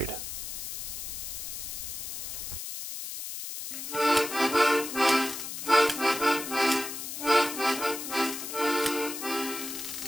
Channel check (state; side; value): noise; left; hiss, 7 dB below the sound